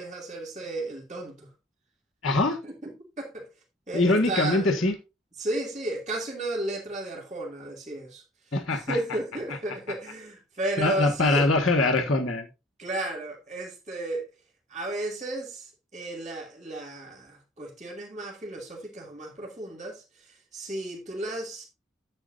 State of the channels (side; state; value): both; normal; correlation 0.47